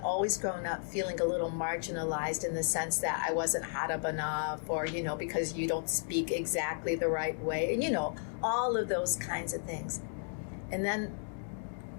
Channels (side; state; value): right; silent; digital silence